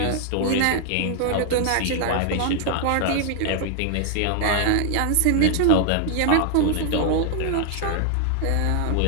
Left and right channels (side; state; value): both; different; correlation 0.00